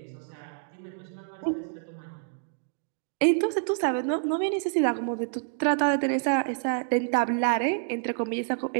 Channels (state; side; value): silent; left; digital silence